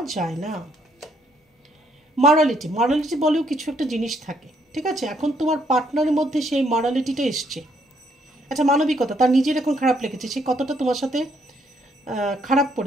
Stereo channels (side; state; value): both; normal; correlation 0.70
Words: যায় না। মরালিটি, মরালিটি বলেও কিছু একটা জিনিস থাকে, ঠিক আছে। এখন তোমার পার্টনারের মধ্যে সেই মরালিটিটা এসছে। আচ্ছা, মানবিকতা, তার নিজের এখন খারাপ লেগেছে, সে কতটা তোমার সাথে খারাপ